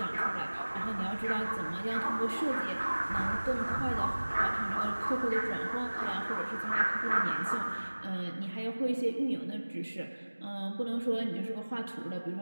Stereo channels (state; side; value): inverted; both; correlation -1.00